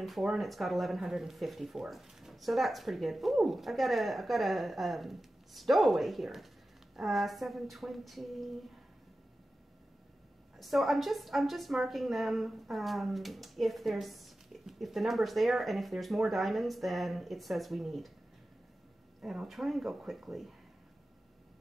and it's got 1,154. So that's pretty good. Ooh, I've got a stowaway here. 720. So I'm just marking them if the number's there, and if there's more diamonds than it says we need. And I'll try and go quickly.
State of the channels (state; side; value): normal; both; correlation 0.94